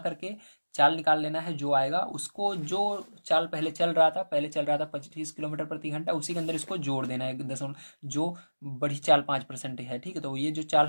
चाल निकाल लेना है। जो आएगा उसको, जो चाल पहले चल रहा था, 25 किलोमीटर प्रति घंटा, उसी के अंदर इसको जोड़ देना है दशमलव, जो बड़ी चाल 5% है। ठीक है, तो ये जो चाल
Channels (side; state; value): both; inverted; correlation -1.00